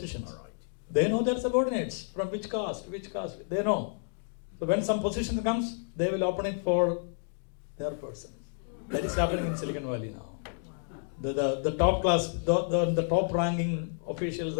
They know their subordinates from which caste, they know. So when some position comes, they will open it for their person. That is happening in Silicon Valley now. The top class, the top ranking officials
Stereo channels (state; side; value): silent; right; digital silence